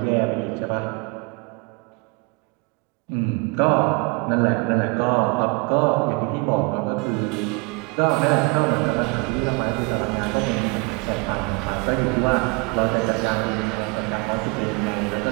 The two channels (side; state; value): left; quieter; 29.3 dB